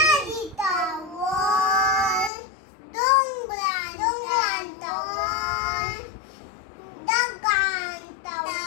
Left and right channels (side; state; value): right; drops out; at 2.3 s